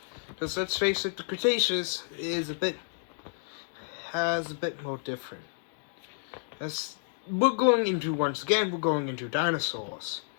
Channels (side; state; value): right; silent; digital silence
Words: Because let's face it, the Cretaceous has a bit more different. As we're going into dinosaurs.